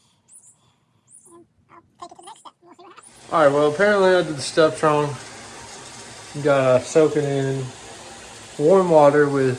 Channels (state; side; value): identical; both; correlation 1.00